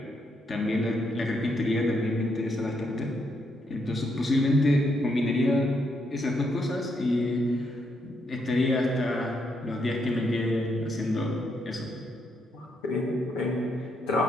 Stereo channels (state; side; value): normal; both; correlation 0.78